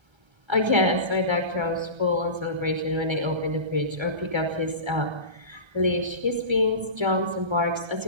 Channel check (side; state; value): left; late; 1.3 ms